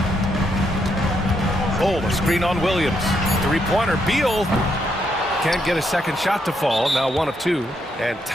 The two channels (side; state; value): both; normal; correlation 0.77